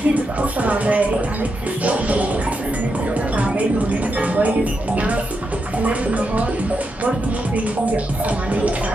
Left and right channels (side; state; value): both; normal; correlation 0.85